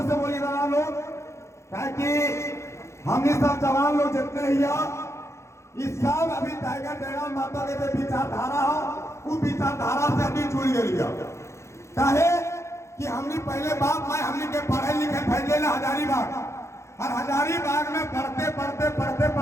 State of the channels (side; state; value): right; late; 0.14 ms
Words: से बोलिए ना लोग, ताकि हमने सब जवान लोग जितने ही इस सब अभी टाइगर जयराम माता के जो विचारधारा हो, वो विचारधारा से अभी जुड़ गई है। चाहे कि हमने पहले बाप माए हमने के पढ़े लिखे फैले ना हजारीबाग, और हजारीबाग में पढ़ते पढ़ते पढ़ते